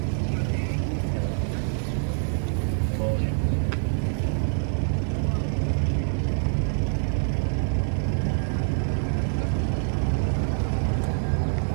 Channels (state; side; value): silent; left; 61 dB below the other